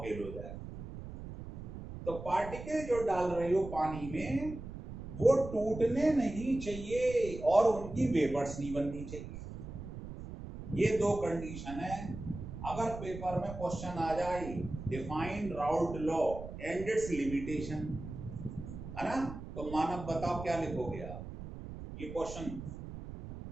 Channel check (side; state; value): right; noise; rumble, 10 dB below the sound